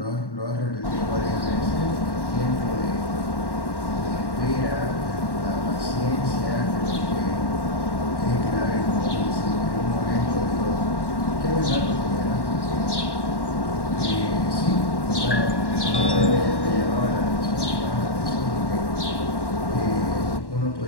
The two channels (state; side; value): late; right; 1.1 ms